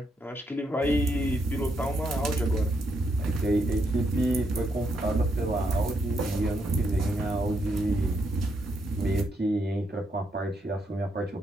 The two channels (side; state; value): both; normal; correlation 0.78